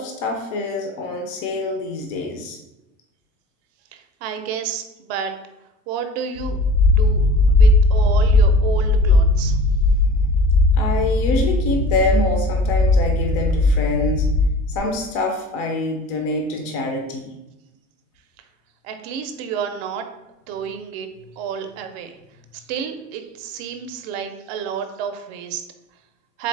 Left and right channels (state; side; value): normal; both; correlation 0.41